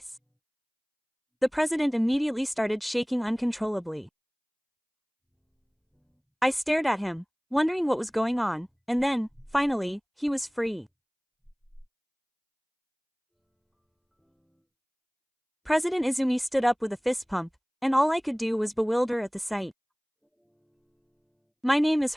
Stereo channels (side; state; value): both; identical; correlation 1.00